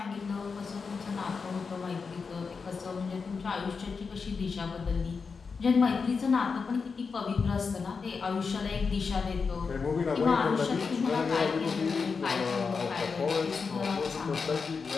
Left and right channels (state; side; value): quieter; right; 5.1 dB